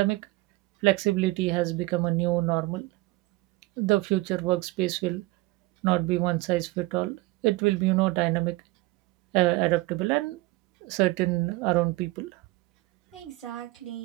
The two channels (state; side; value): quieter; left; 21.1 dB